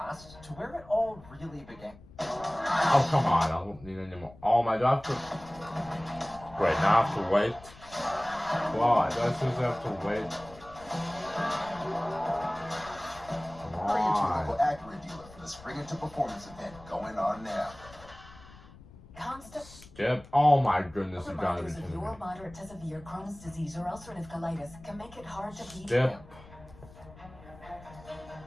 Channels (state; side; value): noise; left; rumble, 20 dB below the sound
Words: to where it all really began. Oh, come on. I don't need any more. Oh my god. Wait, now I have to wait. Wow, I just have to wait. Bring it to your local Acura dealer for the Spring Into Performance event going on now. Skip. Oh my goodness, you gotta be Reminders of kidding me. your moderate to severe Crohn's disease or ulcerative colitis can make it hard to beat Skip. them.